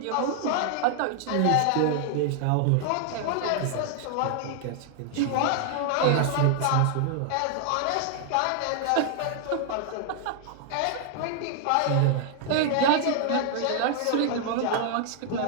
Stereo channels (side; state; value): both; different; correlation 0.00